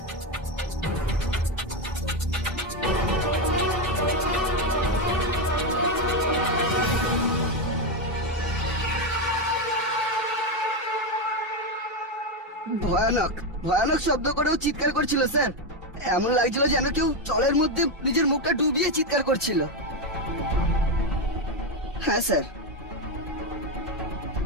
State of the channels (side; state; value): both; normal; correlation 0.09